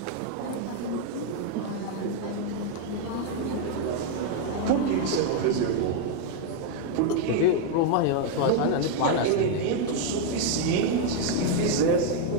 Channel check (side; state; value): both; different; correlation 0.01